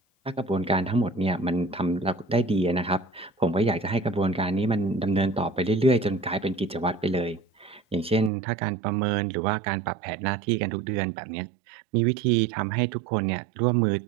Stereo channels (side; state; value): left; drops out; at 8.3 s